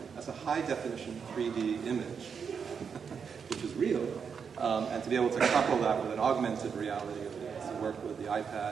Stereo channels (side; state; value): left; quieter; 6.4 dB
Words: am, as a high definition 3D image, which is real, and to be able to couple that with an augmented reality, to work with the